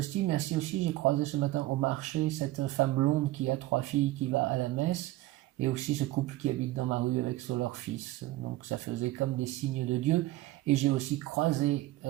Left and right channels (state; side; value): quieter; left; 17.1 dB